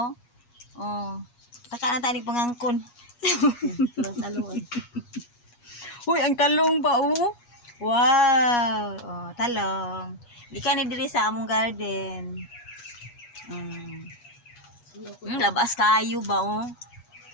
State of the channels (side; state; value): right; late; 8.3 ms